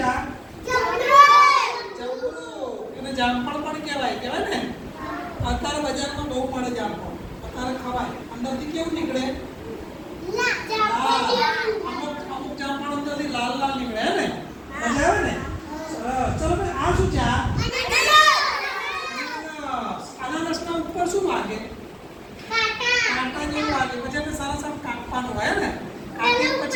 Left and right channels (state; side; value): identical; both; correlation 1.00